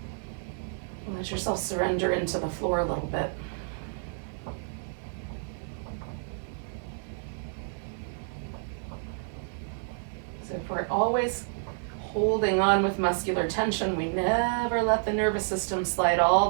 Let yourself surrender into the floor a little bit. So if we're always holding on with muscular tension, we never let the nervous system slide all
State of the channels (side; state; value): left; silent; digital silence